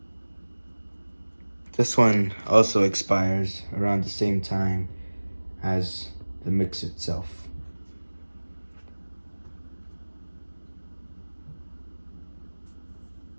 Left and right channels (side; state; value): both; inverted; correlation -1.00